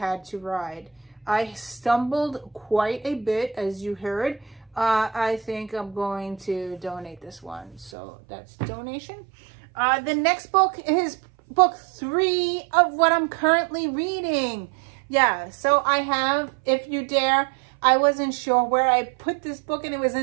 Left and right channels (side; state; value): left; drops out; at 7.9 s